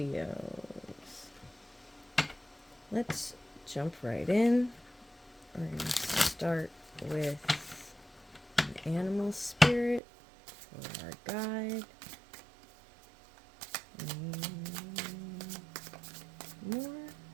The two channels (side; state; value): left; drops out; at 10.0 s